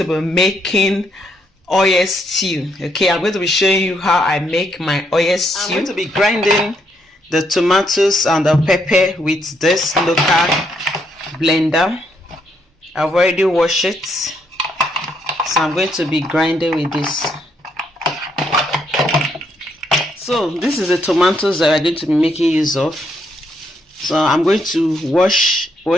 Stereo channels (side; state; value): both; normal; correlation 0.75